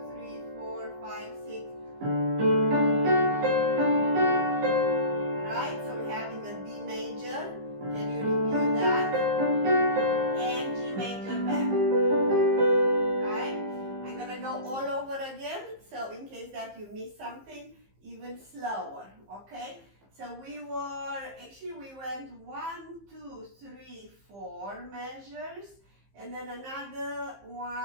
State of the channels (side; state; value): left; late; 15 ms